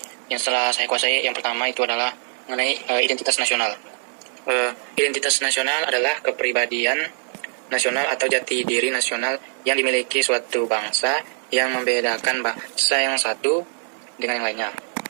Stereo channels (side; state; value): left; silent; digital silence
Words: yang setelah saya kuasai yang pertama itu adalah mengenai identitas nasional. Identitas nasional adalah kepribadian nasional atau jati diri nasional yang dimiliki suatu bangsa yang membedakan bangsa yang satu dengan yang lainnya.